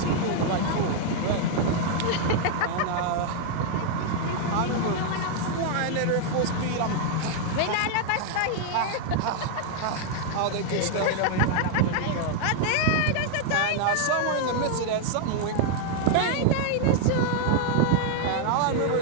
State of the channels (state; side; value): different; both; correlation 0.00